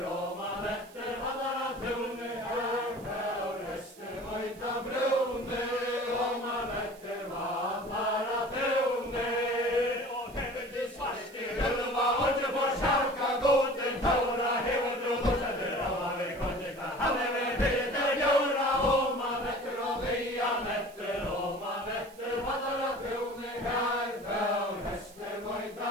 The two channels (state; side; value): noise; right; hiss, 23 dB below the sound